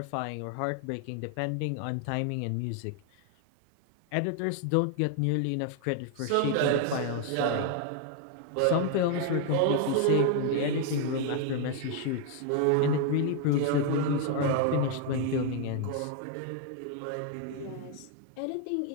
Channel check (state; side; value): different; both; correlation 0.00